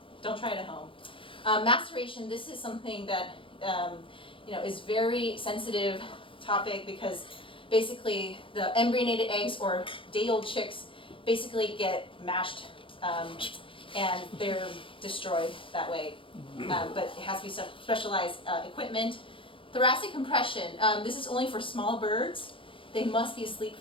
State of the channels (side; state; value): right; late; 0.25 ms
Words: don't try it at home. Maceration, this is something that is very sensitive topic, because basically the embryonated eggs or day-old chicks basically get mashed and they're destroyed that way. But it has to be specialized equipment. Thoracic compression, this is only for small birds. They must be asleep